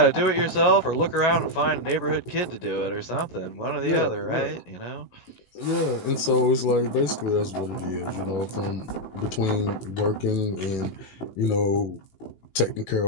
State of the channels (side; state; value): right; late; 18 ms